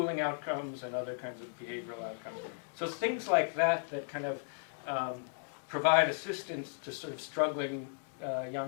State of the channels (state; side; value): silent; right; digital silence